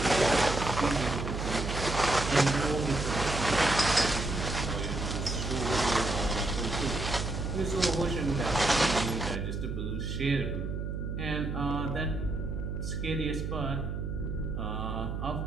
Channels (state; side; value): noise; right; hum, 3 dB below the sound